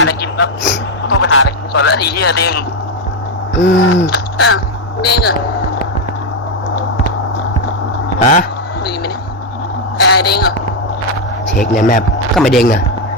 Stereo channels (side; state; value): both; normal; correlation 0.05